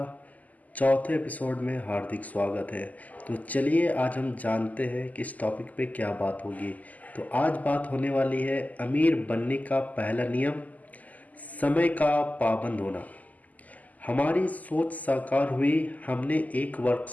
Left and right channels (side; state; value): right; late; 0.078 ms